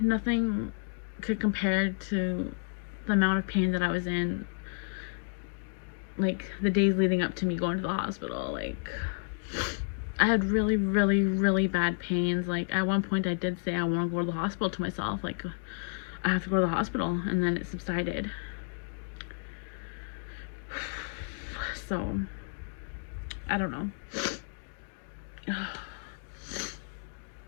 could compare to the amount of pain that I was in, like, the days leading up to me going to the hospital. Like, I had really, really, really bad pains. Like, at one point I did say I want to go to the hospital to myself. Like, I have to go to the hospital, and then it subsided. So, I don't know. Going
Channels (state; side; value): silent; right; 57 dB below the other